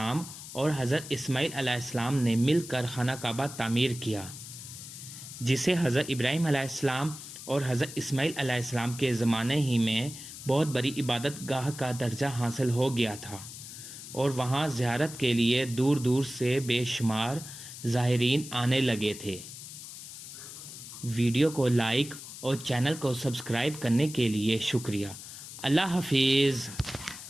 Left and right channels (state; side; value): noise; left; hiss, 12 dB below the sound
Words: اور حضرت اسماعیل علیہ السلام نے مل کر خانہ کعبہ تعمیر کیا، جسے حضرت ابراہیم علیہ السلام اور حضرت اسماعیل علیہ السلام کے زمانے ہی میں بہت بڑی عبادت گاہ کا درجہ حاصل ہو گیا تھا، اور وہاں زیارت کے لیے دور دور سے بے شمار زائرین آنے لگے تھے۔ ویڈیو کو لائک اور چینل کو سبسکرائب کرنے کے لیے شکریہ۔ اللہ حافظ۔